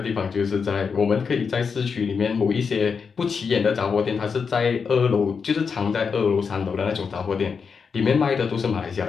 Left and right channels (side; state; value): right; quieter; 5.8 dB